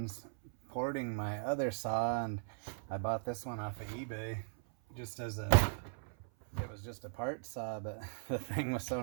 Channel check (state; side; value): silent; left; 52 dB below the other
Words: porting my other saw and I bought this one off of eBay it was just a part saw, but the thing was so